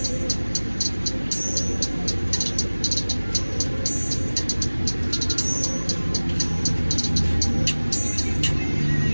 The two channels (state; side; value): inverted; both; correlation -1.00